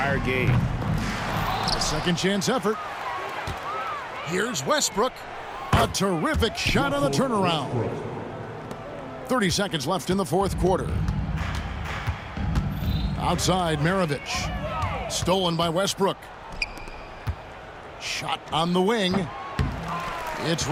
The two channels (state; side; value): identical; both; correlation 1.00